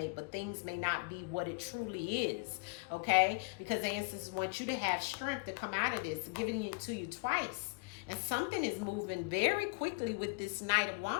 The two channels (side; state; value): right; quieter; 32.5 dB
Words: but things may not be what it truly is, okay? Because the ancestors want you to have strength to come out of this, giving it to you twice. And something is moving very quickly with this Knight of